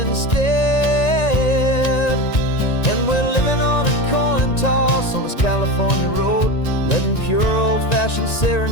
And we're living on a coin toss on this California road, letting pure old-fashioned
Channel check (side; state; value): right; late; 1.9 ms